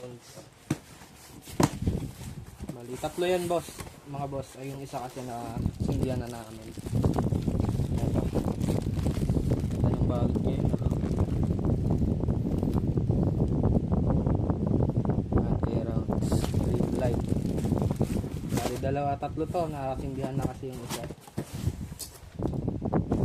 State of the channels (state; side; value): identical; both; correlation 1.00